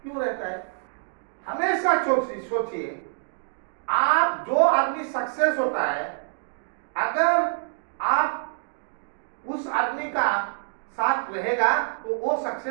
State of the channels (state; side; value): silent; left; digital silence